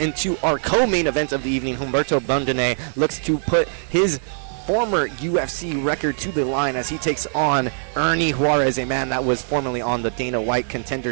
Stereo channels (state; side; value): silent; left; digital silence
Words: our co-main event of the evening. Humberto Bandone looks to put his former UFC record to the line as he takes on Ernie Juarez, a man that was formerly on the Dana White